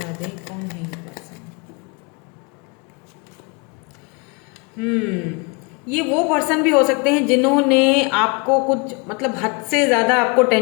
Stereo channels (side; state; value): right; quieter; 30.9 dB